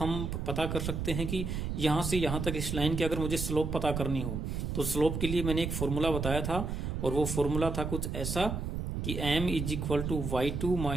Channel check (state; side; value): noise; right; rumble, 3 dB below the sound